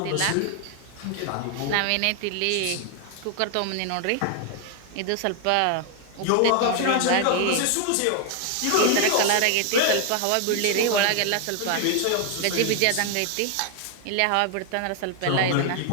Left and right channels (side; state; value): both; different; correlation 0.00